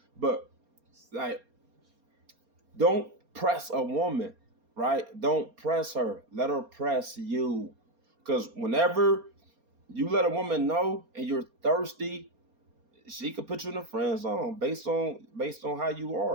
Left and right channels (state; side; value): late; left; 4.3 ms